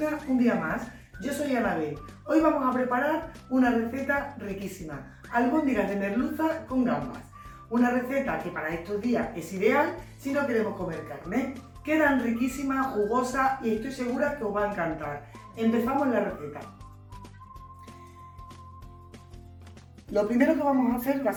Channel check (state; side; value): identical; both; correlation 1.00